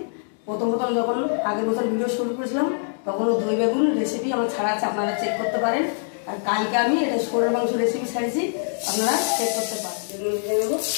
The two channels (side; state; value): right; silent; digital silence